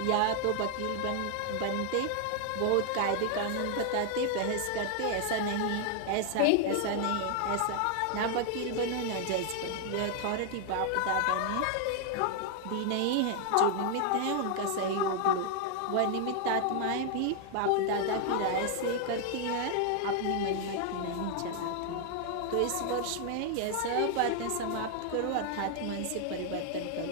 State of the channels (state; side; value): different; both; correlation 0.00